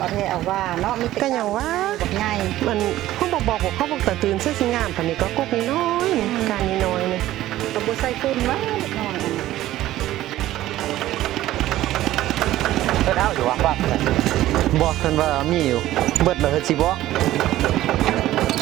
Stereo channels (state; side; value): quieter; left; 14.7 dB